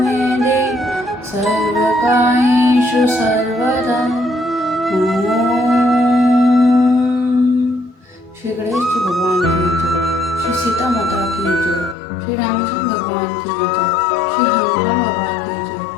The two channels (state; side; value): drops out; right; at 12.0 s